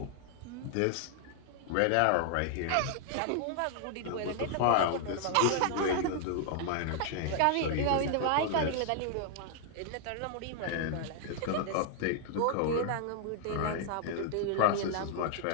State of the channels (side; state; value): both; different; correlation 0.00